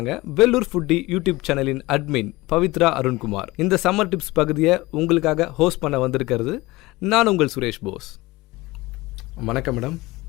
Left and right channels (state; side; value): quieter; right; 20.6 dB